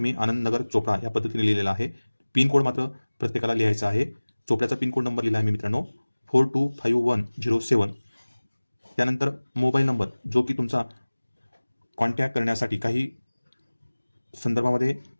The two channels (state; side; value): inverted; both; correlation -1.00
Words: मी आनंदनगर चोपडा या पद्धतीने लिहिलेला आहे. पिनकोड मात्र प्रत्येकाला लिहायचा आहे. चोपड्याचा पिनकोड नंबर लिहिला आहे मी मित्रांनो 425107. त्यानंतर मोबाईल नंबर जो की तुमचा कॉन्टॅक्ट करण्यासाठी काही संदर्भामध्ये